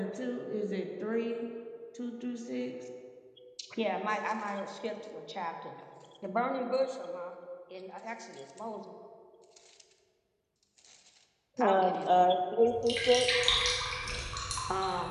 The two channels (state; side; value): identical; both; correlation 1.00